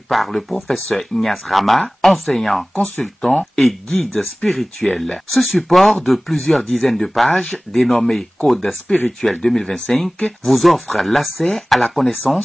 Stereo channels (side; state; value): both; normal; correlation 0.98